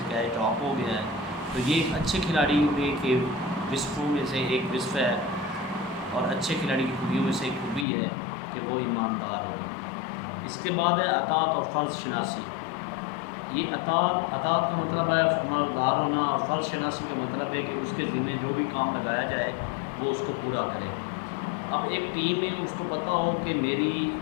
کیچ ڈراپ ہو گیا ہے۔ تو یہ ایک اچھے کھلاڑی میں کے وصفوں میں سے ایک وصف ہے، اور اچھے کھلاڑی کی خوبیوں میں سے ایک خوبی ہے کہ وہ ایماندار ہو۔ اس کے بعد ہے اطاعت اور فرض شناسی۔ یہ اطاعت کا مطلب ہے فرمانبردار ہونا، اور فرض شناسی کا مطلب ہے کہ اس کے ذمہ جو بھی کام لگایا جائے وہ اس کو پورا کرے۔ اب ایک ٹیم میں اس کو پتہ ہو کہ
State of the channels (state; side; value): drops out; right; at 7.9 s